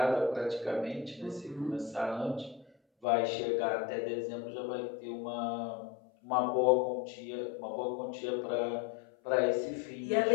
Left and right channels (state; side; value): drops out; right; at 3.1 s